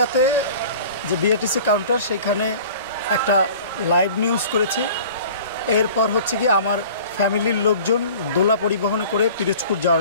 যে বিএটিসি কাউন্টার সেখানে একটা লাইভ নিউজ করেছি। এরপর হচ্ছে কি আমার ফ্যামিলির লোকজন দোলা পরিবহনে করে পিরোজপুর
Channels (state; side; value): inverted; both; correlation -0.44